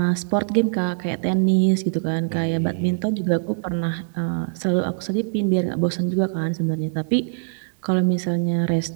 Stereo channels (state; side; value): silent; left; digital silence